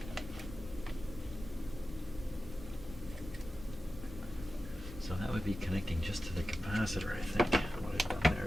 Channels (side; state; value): both; normal; correlation 0.93